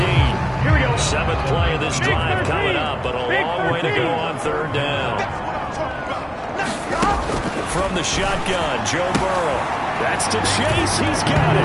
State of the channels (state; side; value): identical; both; correlation 1.00